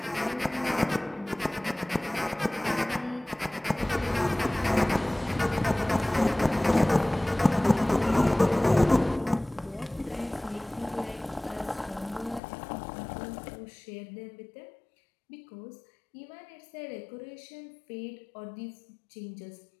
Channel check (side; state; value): right; drops out; at 12.4 s